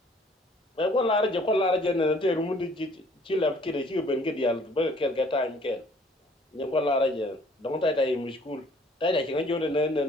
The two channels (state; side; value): normal; both; correlation 0.58